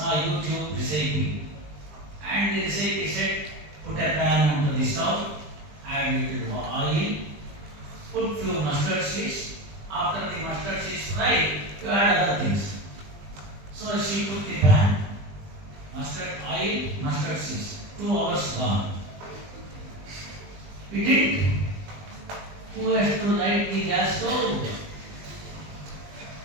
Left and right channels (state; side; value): late; left; 20 ms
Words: YouTube recipe, and the recipe said, put a pan onto the stove, add a little oil, put few mustard seeds. After the mustard seeds fry, you has told.